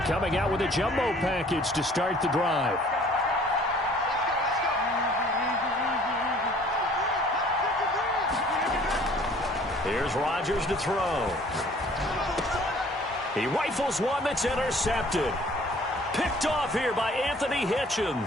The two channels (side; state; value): both; normal; correlation 0.54